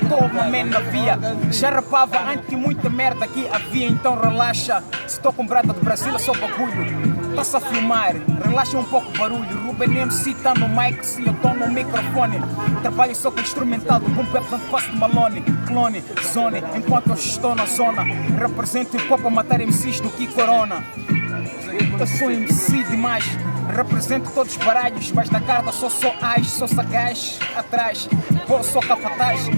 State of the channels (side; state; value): both; inverted; correlation -1.00